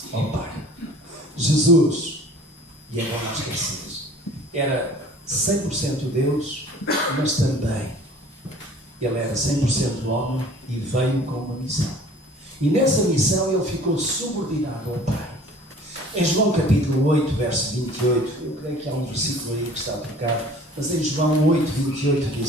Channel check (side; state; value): both; normal; correlation 0.48